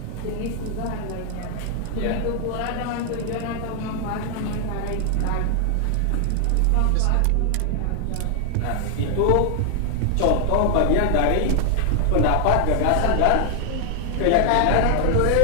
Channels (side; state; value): both; different; correlation 0.00